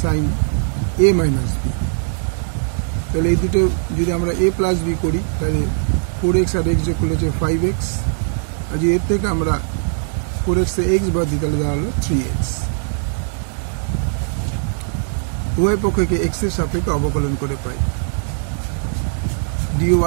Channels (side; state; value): left; silent; digital silence